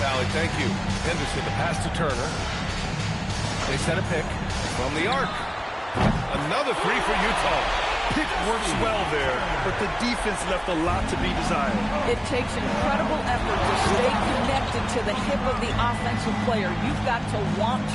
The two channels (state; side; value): identical; both; correlation 1.00